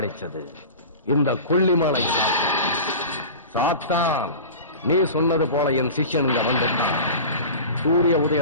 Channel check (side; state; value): both; inverted; correlation -0.34